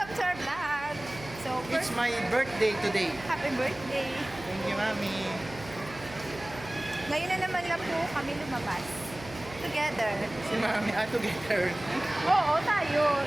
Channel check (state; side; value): noise; right; hum, 16 dB below the sound